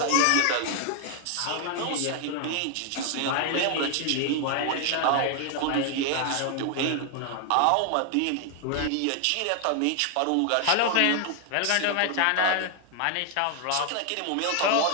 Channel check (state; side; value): different; both; correlation 0.00